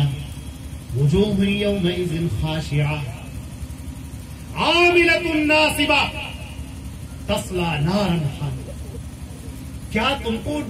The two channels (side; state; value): both; identical; correlation 1.00